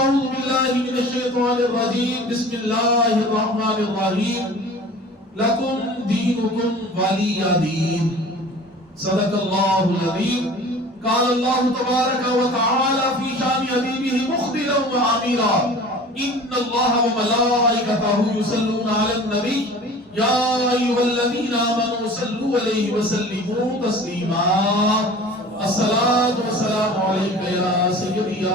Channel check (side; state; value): both; normal; correlation 0.42